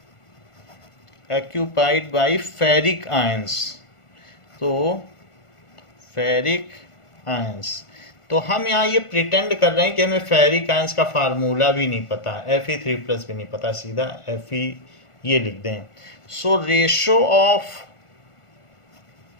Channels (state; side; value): late; right; 1.5 ms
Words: by ferric ions. तो फेरिक आयंस। तो हम यहाँ ये प्रिटेंड कर रहे हैं कि हमें फेरिक आयंस का फार्मूला भी नहीं पता, Fe3+ भी नहीं पता, सीधा Fe ये लिख दें। सो रेशो ऑफ